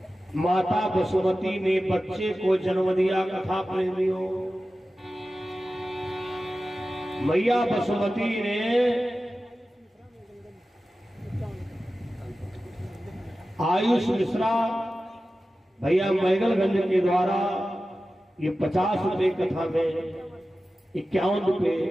माता वसुमती ने बच्चे को जन्म दिया। कथा प्रेमियों, मैया वसुमती ने आयुष मिश्रा भैया मैगलगंज के द्वारा ये 50 रुपए कथा में 51 रुपए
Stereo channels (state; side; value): normal; both; correlation 0.94